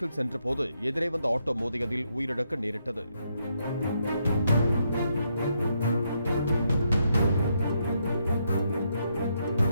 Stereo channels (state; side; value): inverted; both; correlation -0.78